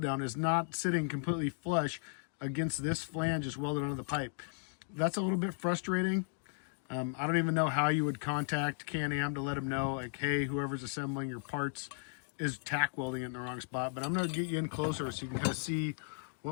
down is not sitting completely flush against this flange just welded onto the pipe. That's a little bit frustrating. I don't even know how you would contact Can-Am to let them know, like, hey, whoever's assembling your parts is tack welding it in the wrong spot. But I'm going to get you in closer so you can kind of see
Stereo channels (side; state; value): right; silent; digital silence